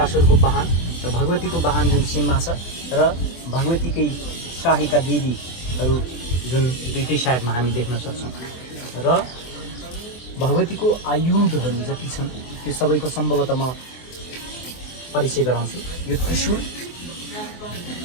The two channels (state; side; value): late; right; 24 ms